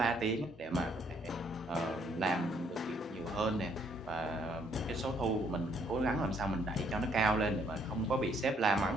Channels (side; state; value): both; normal; correlation 0.67